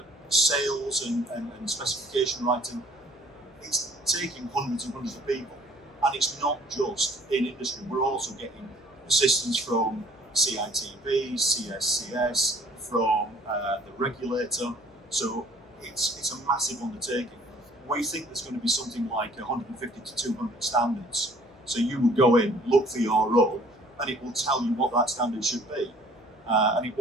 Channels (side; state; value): left; noise; hum, 28 dB below the sound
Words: sales and specification writing, it's taking hundreds and hundreds of people. And it's not just in industry, we're also getting assistance from CITB, CSCS, from the regulator. So it's a massive undertaking. We think there's going to be something like 150 to 200 standards. So you will go in, look for your role, and it will tell you what that standard should be. And it